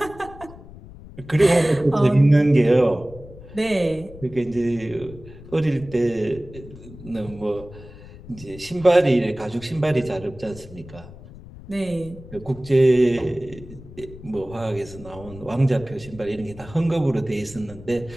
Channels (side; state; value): left; noise; rumble, 17 dB below the sound